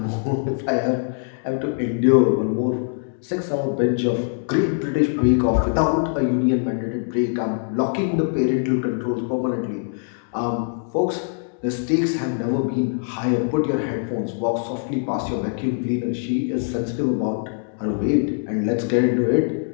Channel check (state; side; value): silent; right; digital silence